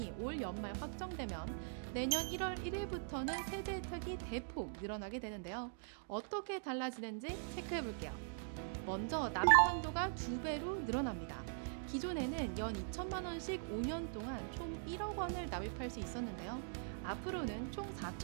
올 연말 확정되면 내년 1월 1일부터는 세제 혜택이 대폭 늘어나게 되는데요. 어떻게 달라지는지 체크해볼게요. 먼저 납입 한도가 2배로 늘어납니다. 기존에는 연 2천만 원씩 5년 동안 총 1억 원을 납입할 수 있었는데요. 앞으로는 총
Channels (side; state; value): left; silent; digital silence